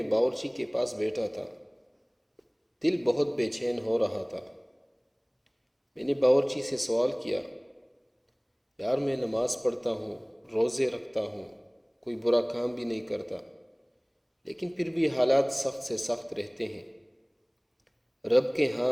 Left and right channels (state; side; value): identical; both; correlation 1.00